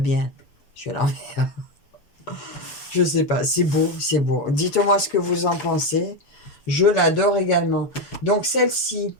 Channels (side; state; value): right; late; 6.9 ms